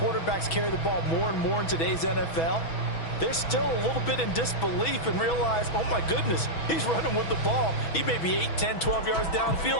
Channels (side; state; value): right; late; 6.1 ms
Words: carry the ball more and more in today's NFL. They're still a little bit in disbelief and realize, oh my goodness, he's running with the ball. He may be 8, 10, 12 yards